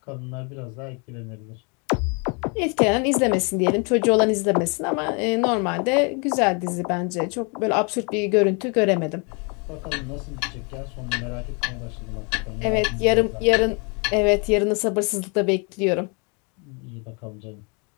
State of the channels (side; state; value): right; quieter; 33.9 dB